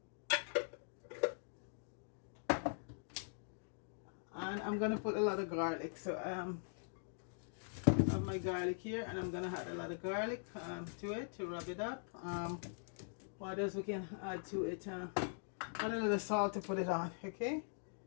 And I'm gonna put a lot of garlic. So I have my garlic here, and I'm gonna add a lot of garlic to it to rub it up. What else we can add to it? Add a little salt to put it on. Okay.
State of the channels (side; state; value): right; silent; digital silence